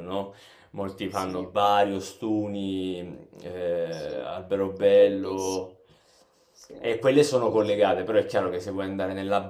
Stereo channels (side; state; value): both; identical; correlation 1.00